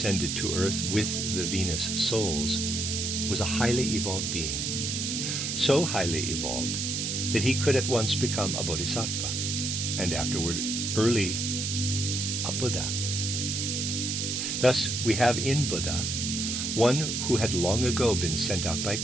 to Earth with the Venus souls, was a highly evolved being. So highly evolved that he could at once become a bodhisattva, and afterward early a Buddha. Thus we have in Buddha one who had long ago been sent out by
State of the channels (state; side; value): noise; right; hiss, 1 dB below the sound